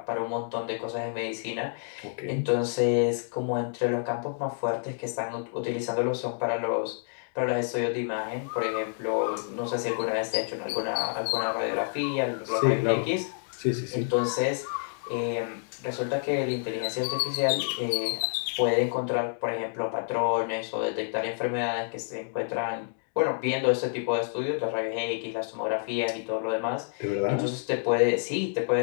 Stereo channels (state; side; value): silent; right; digital silence